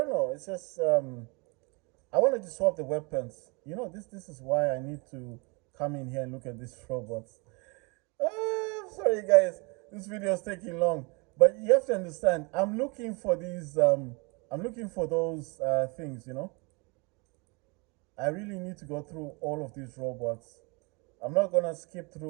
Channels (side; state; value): left; quieter; 29.9 dB